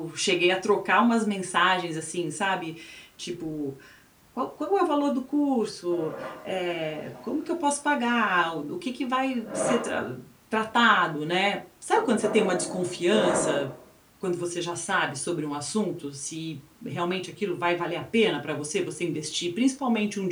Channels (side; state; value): both; identical; correlation 1.00